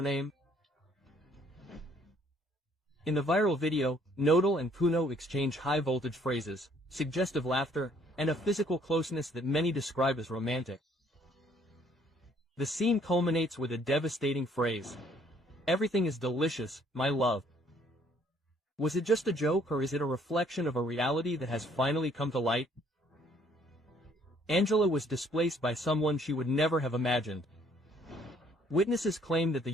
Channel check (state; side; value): normal; both; correlation 0.62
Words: In the viral video, Nodal and Puno exchange high-voltage phrases, suggestive laughter, and a physical closeness that many describe as romantic. The scene culminates with a devastating phrase. Everything is delicious, my love. Was it just a joke or is it a reflection of a reality that has finally come to light? Angela was displaced by someone she would never have imagined. Witnesses claim that the